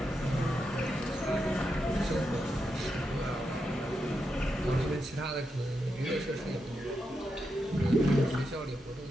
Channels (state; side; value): normal; both; correlation 0.86